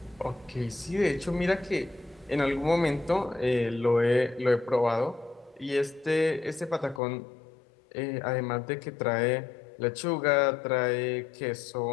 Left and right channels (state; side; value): drops out; right; at 7.0 s